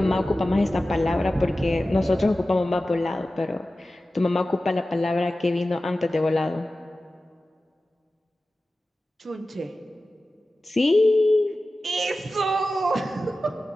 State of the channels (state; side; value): normal; both; correlation 0.95